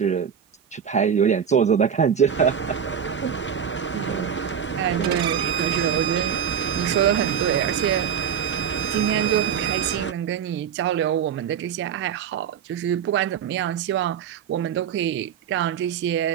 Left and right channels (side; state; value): left; quieter; 8.0 dB